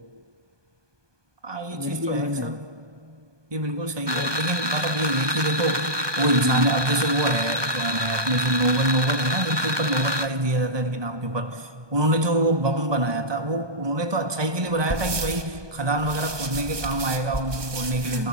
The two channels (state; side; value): late; left; 1.2 ms